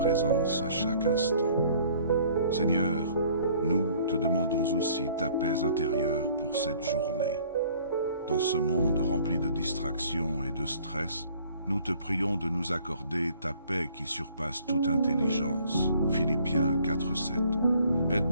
à chaque instant. Seigneur, nous te demandons aussi ta paix intérieure pour cette journée. Dans ce monde rempli de distractions et de stress, nous te prions de nous accorder ta paix qui surpasse toute intelligence. Philippiens 4:7.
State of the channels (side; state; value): both; inverted; correlation -0.57